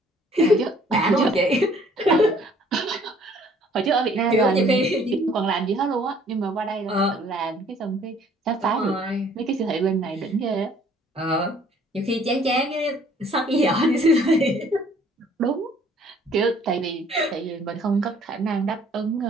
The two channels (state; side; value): normal; both; correlation 0.58